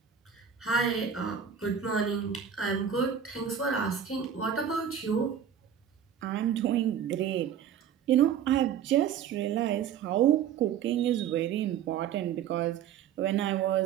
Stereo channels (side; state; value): left; quieter; 8.5 dB